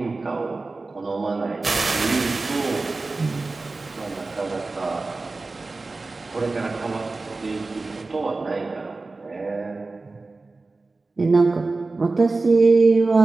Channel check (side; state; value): left; quieter; 3.6 dB